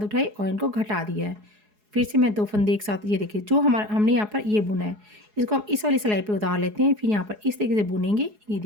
और इनको घटा दिया है। फिर से मैं 2 फंदे एक साथ, ये देखिए जो हमारा हमने यहाँ पर ये बुना है इसको हम इस वाली सिलाई पे उतार लेते हैं, फिर यहाँ पर इस तरीके से बुनेंगे। ये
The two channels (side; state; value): left; late; 4.8 ms